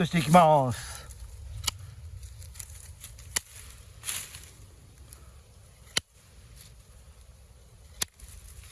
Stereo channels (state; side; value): identical; both; correlation 1.00